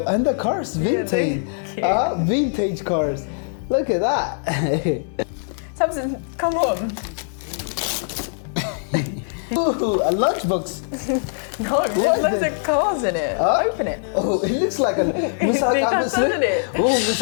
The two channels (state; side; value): silent; right; digital silence